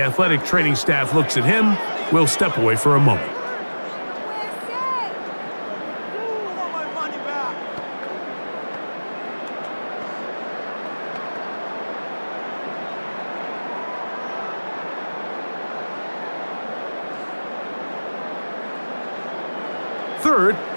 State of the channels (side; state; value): both; inverted; correlation -1.00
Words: athletic training staff looks at him, we'll step away for a moment. Third